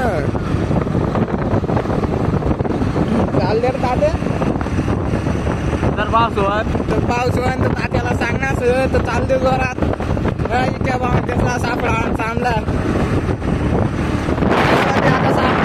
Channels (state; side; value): identical; both; correlation 1.00